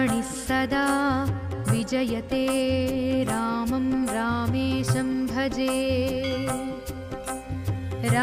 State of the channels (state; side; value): identical; both; correlation 1.00